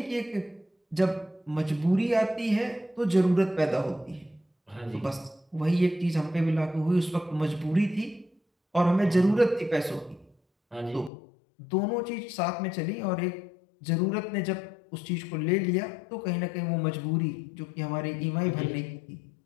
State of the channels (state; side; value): drops out; right; at 11.1 s